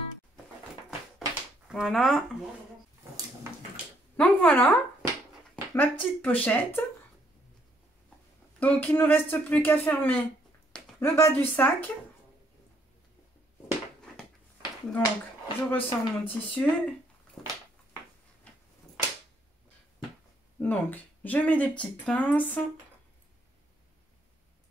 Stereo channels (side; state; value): both; normal; correlation 0.69